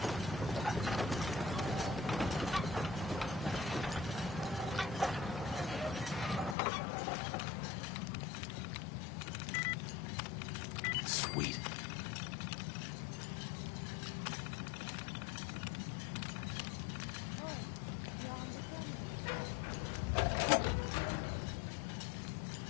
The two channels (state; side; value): drops out; right; at 6.6 s